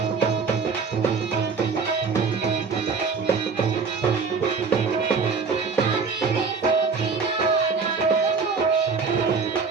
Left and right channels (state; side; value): quieter; left; 5.1 dB